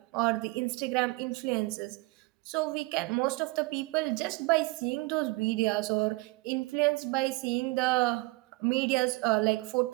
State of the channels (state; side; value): quieter; left; 23.7 dB